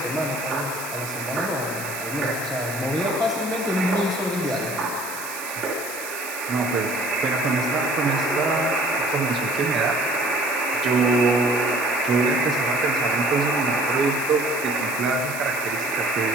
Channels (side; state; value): right; noise; hiss, 10 dB below the sound